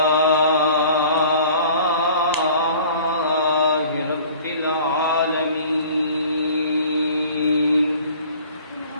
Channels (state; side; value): inverted; both; correlation -0.48